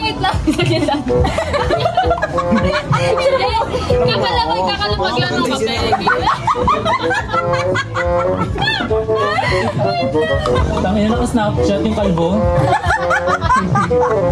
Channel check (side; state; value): both; identical; correlation 1.00